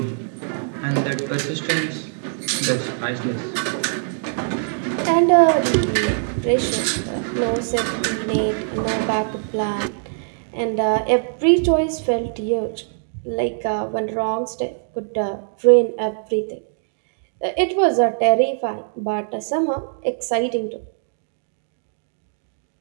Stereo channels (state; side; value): silent; left; digital silence